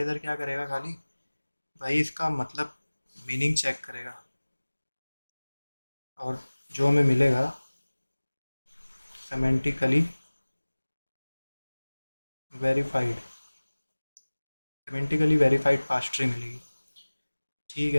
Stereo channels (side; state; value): both; inverted; correlation -1.00